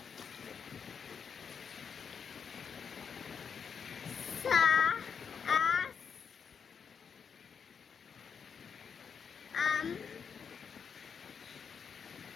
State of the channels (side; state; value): right; quieter; 6.6 dB